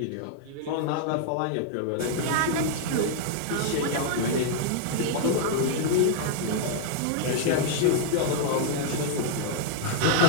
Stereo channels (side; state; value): both; different; correlation -0.01